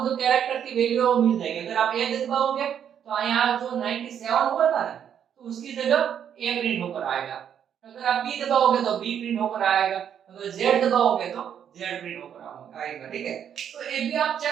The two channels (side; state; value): left; quieter; 8.8 dB